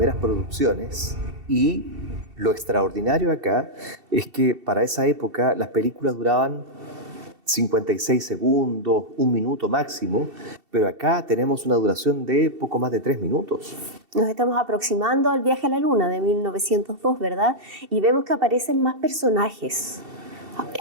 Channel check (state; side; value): late; left; 2.7 ms